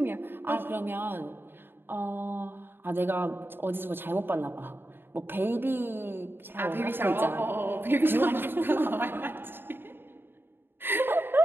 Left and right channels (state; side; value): late; left; 0.10 ms